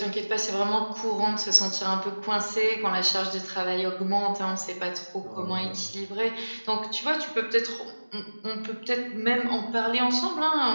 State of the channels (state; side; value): inverted; both; correlation -1.00